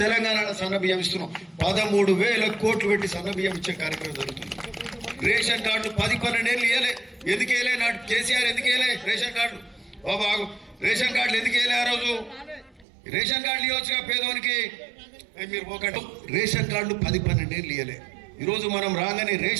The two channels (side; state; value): left; drops out; at 12.9 s